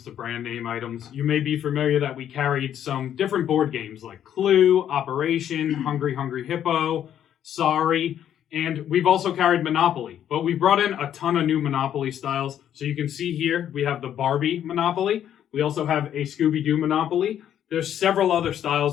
to brand name items. You may be familiar that we carried some different board games like Clue, Operation, Hungry Hungry Hippo, Sorry, and we've also carried Monopoly. But we brought in a ton of new Monopoly styles. So you can see here, we have the Barbie Monopoly. We also have a Scooby-Doo Monopoly. There's several other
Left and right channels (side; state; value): right; quieter; 10.2 dB